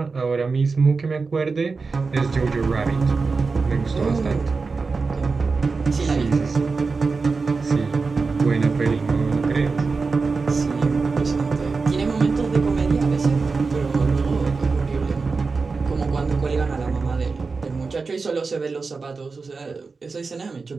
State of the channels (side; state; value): left; quieter; 4.4 dB